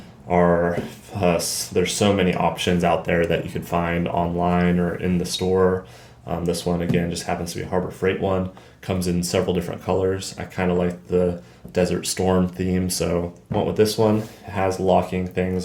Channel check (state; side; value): identical; both; correlation 1.00